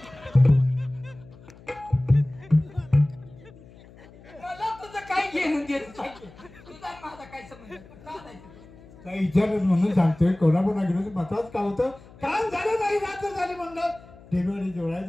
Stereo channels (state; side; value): noise; left; hum, 22 dB below the sound